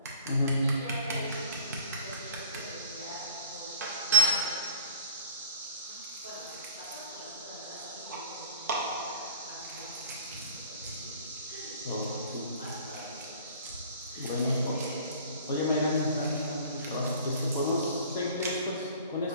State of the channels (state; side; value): inverted; both; correlation -0.52